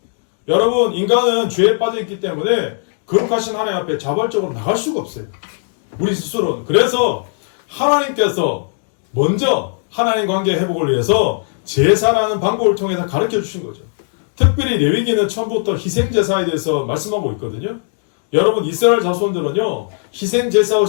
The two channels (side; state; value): right; silent; digital silence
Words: 여러분 인간은 죄에 빠져있기 때문에 거룩하신 하나님 앞에 자발적으로 나갈 수가 없어요. 우리 스스로는. 그래서 하나님께서 먼저 하나님 관계 회복을 위해서 제사라는 방법을 통해서 가르쳐 주신 거죠. 특별히 레위기는 처음부터 희생제사에 대해서 말씀하고 있거든요. 여러분 이스라엘 자손들은요